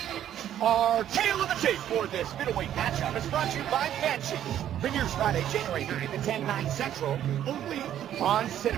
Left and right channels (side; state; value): left; quieter; 11.0 dB